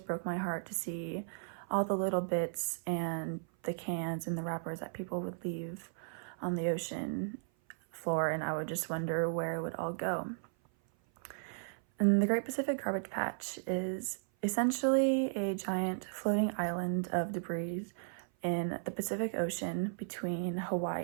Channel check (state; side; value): silent; left; 54 dB below the other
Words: broke my heart to see all the little bits and the cans and the wrappers that people would leave on the ocean floor, and I would just wonder where it would all go. And the Great Pacific Garbage Patch is essentially a giant floating island of debris in the Pacific Ocean between